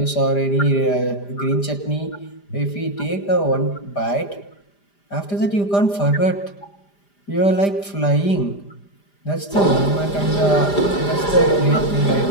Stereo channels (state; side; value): late; right; 5.0 ms